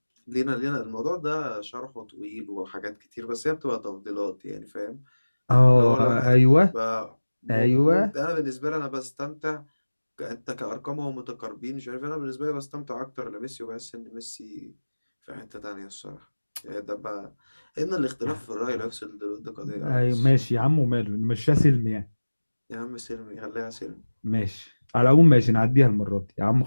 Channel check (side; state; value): both; inverted; correlation -1.00